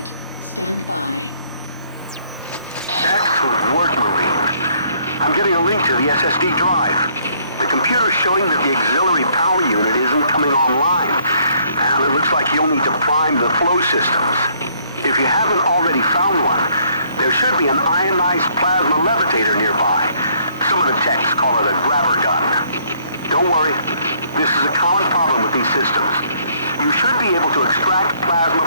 Stand by. Excellent work, Marine. I'm getting a link to the SSD drive. The computer's showing that the auxiliary power unit isn't coming online, and it looks like you'll need to prime the flow systems. If you haven't already found one, there should be an ionized plasma levitator nearby. Some of the techs call it a grabber gun. Don't worry, this is a common problem with these systems. You should be able to extract plasma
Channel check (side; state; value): both; inverted; correlation -0.65